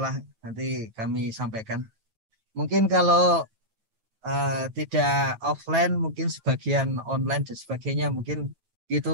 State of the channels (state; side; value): late; left; 9.3 ms